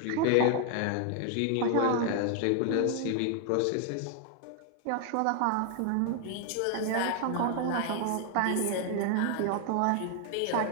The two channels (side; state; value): both; different; correlation 0.00